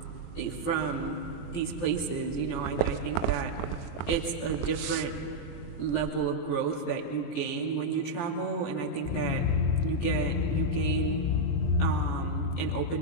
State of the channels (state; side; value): late; right; 18 ms